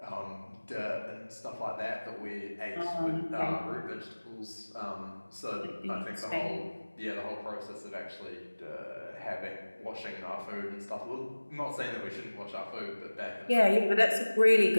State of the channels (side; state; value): both; inverted; correlation -1.00